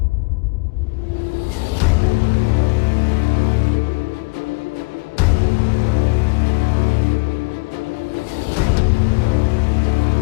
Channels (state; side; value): quieter; right; 28.0 dB